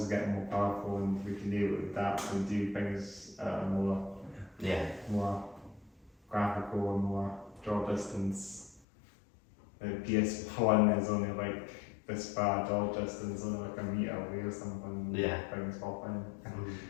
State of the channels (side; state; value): right; drops out; at 8.8 s